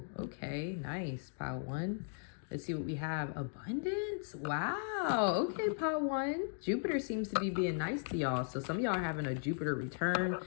Okay, nice. Pile 1. Let's see what we have. Abundance. Wow. Okay, pile 1. Jupiter seems to be being nice to y'all. So some of y'all are having a Jupiter return.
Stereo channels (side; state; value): right; silent; digital silence